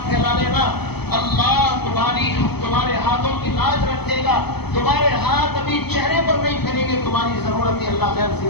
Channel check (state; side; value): late; right; 0.97 ms